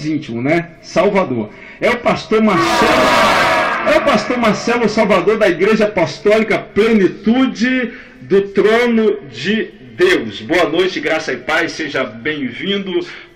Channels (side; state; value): both; identical; correlation 1.00